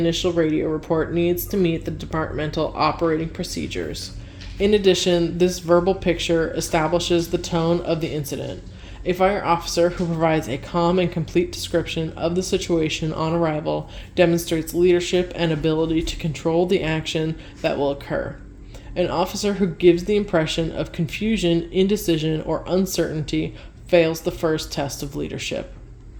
radio report needs to meet the departmental operating procedures. In addition, this verbal picture establishes the tone of the incident. A fire officer who provides a calm and complete description of the situation on arrival demonstrates leadership and ability to control the action that will occur. An officer who gives the impression of confusion, indecision, or uncertainty fails the first test of leadership.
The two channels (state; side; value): identical; both; correlation 1.00